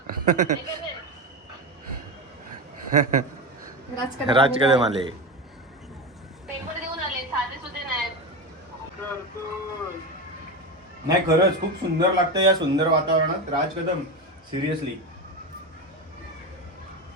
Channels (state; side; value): normal; both; correlation 0.18